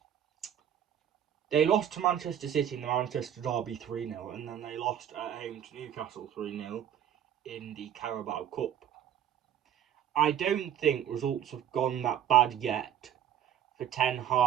they lost to Manchester City in the Manchester Derby 3-0, and then they lost at home to Newcastle 3-0 in the Carabao Cup. I don't think results have gone that bad yet for Ten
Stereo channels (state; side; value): quieter; left; 10.0 dB